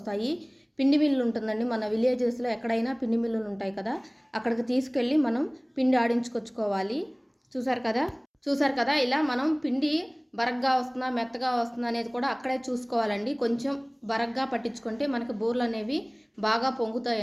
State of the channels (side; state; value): both; identical; correlation 1.00